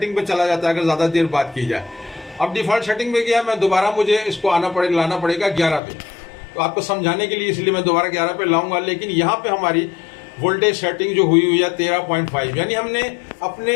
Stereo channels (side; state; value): right; drops out; at 5.8 s